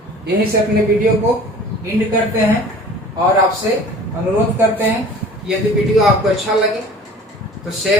यहीं से अपने वीडियो को एंड करते हैं और आपसे अनुरोध करते हैं, यदि वीडियो आपको अच्छा लगे तो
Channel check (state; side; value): normal; both; correlation 0.44